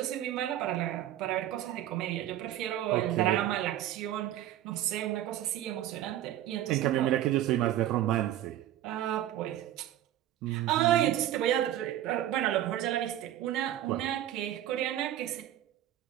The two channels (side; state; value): left; quieter; 12.7 dB